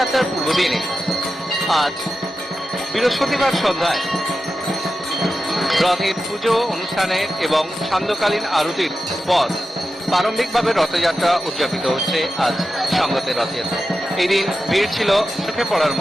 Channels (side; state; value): both; normal; correlation 0.91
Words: পূর্বদিনে আজ বৃহস্পতিবার সন্ধ্যায় রথের পুজো অনুষ্ঠানের এবং সান্ধ্যকালীন আরতির পর প্রারম্ভিকভাবে রথযাত্রা উদযাপিত হচ্ছে আজ সংগতের রথযাত্রা। এই দিন ভিড় ছিল চোখে পড়ার